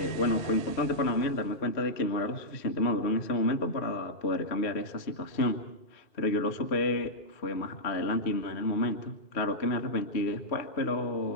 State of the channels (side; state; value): right; late; 3.1 ms